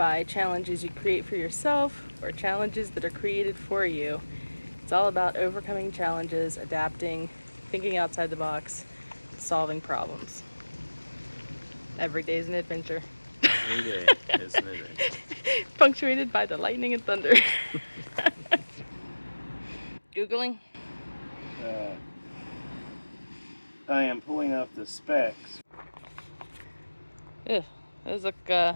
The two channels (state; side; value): inverted; both; correlation -1.00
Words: challenges you create for yourself or challenges that are created for you, it's all about overcoming challenges, adapting, thinking outside the box, solving problems. Every day is an adventure. Every day is an adventure. Punctuated by the lightning and thunder. Googling? I am pulling up the specs. Ugh, those look,